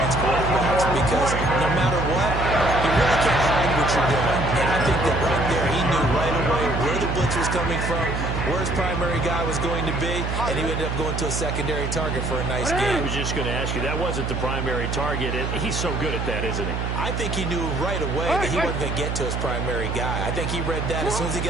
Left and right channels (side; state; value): right; noise; hum, 2 dB below the sound